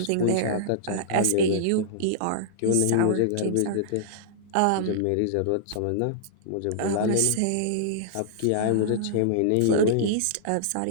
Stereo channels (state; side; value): different; both; correlation -0.02